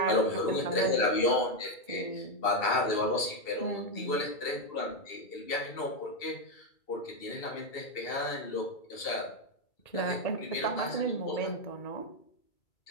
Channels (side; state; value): right; late; 2.3 ms